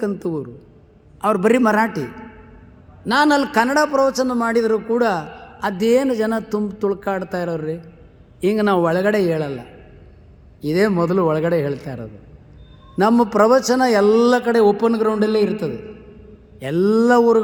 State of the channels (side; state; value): both; identical; correlation 1.00